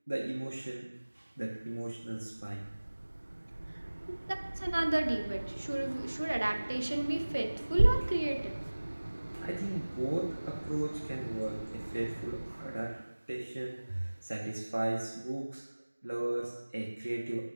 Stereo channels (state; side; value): inverted; both; correlation -1.00